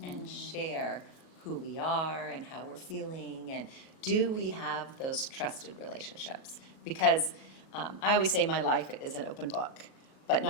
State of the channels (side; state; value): right; late; 38 ms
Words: and share who we are and how we're feeling, and do we have those trusted relationships? Because I always say my life is an open book, but